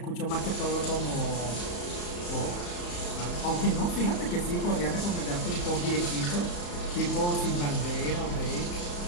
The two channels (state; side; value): late; right; 34 ms